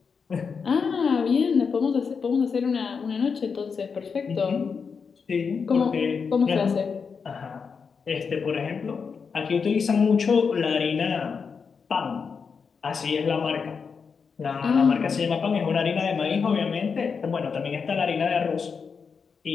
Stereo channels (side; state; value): right; quieter; 5.7 dB